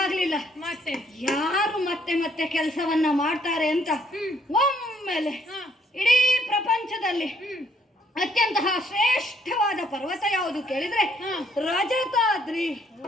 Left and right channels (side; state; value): both; normal; correlation 0.67